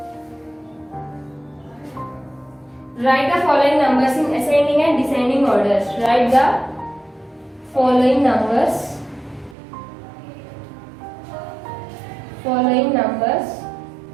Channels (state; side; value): drops out; left; at 9.6 s